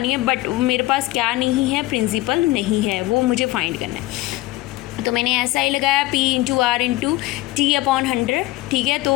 है, बट मेरे पास क्या नहीं है, प्रिंसिपल नहीं है, वो मुझे फाइंड करना है. तो मैंने SI लगाया P into R into T upon 100. ठीक है,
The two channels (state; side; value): quieter; right; 18.1 dB